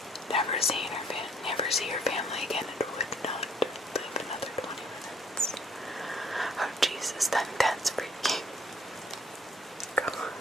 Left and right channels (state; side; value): normal; both; correlation 0.62